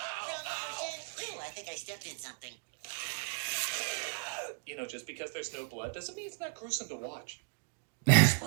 I think I stepped in something. You know, just because there's no blood doesn't mean it's not gruesome to watch.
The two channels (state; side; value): silent; left; digital silence